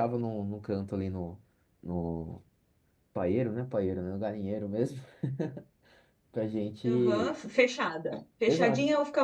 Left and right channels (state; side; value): identical; both; correlation 1.00